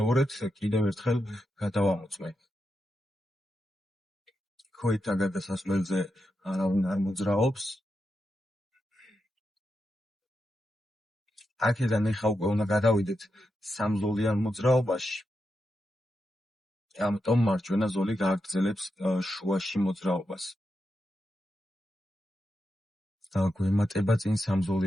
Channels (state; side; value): normal; both; correlation 0.87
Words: კიდევ ერთხელ გადავამოწმე. ქოითა გადასასვლელზე არავინ არ მოძრაობს. აქედან ეხა უკვე უნდა გადავიდეთ სამზოლიან მოძრაობაში. ამიტომ მარჯვენა ზოლი გააგრძელებს შუაში მოძრაობას. გვემატება წინ